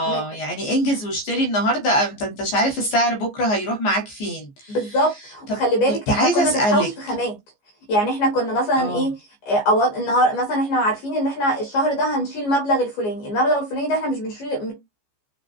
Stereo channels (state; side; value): late; right; 14 ms